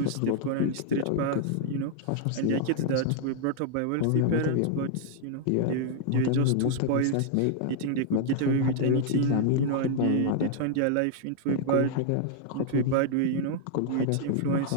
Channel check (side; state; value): both; different; correlation 0.00